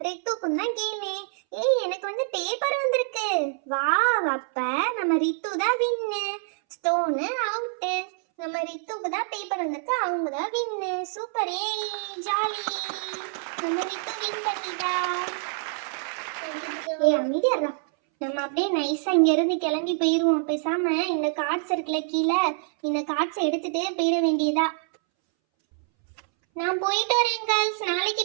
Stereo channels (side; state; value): left; silent; 61 dB below the other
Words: ரித்துக்கும் தான் கேமே. எனக்கு வந்து பேப்பர் வந்திருக்கு. வா, அப்ப நம்ம ரித்து தான் வின்னு. Stone out. நம்ம ரித்துக்கு தான் பேப்பர் வந்திருக்கு. அவங்க தான் வின்னு. சூப்பர். ஜாலி. நம்ம ரித்து வின் பண்ணிட்டா. அமைதியா நம்ம அப்படியே நைஸா இங்க இருந்து கிளம்பி போயிருவோம். பேசாம இந்த கார்ட்ஸ் இருக்குல்ல கீழே, இந்த கார்ட்ஸ் எடுத்துட்டே போயிட வேண்டியதா. நான் போயிட்டு வரேன் கேர்ள்ஸ், நாளைக்கு